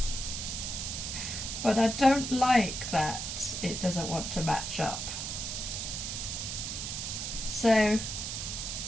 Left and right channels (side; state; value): right; noise; hiss, 4 dB below the sound